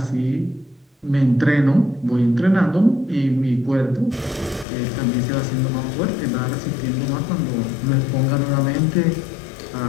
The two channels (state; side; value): drops out; right; at 4.7 s